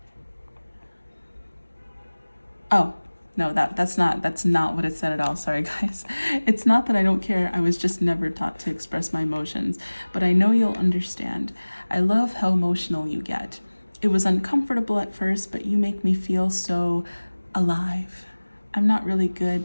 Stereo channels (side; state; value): both; inverted; correlation -1.00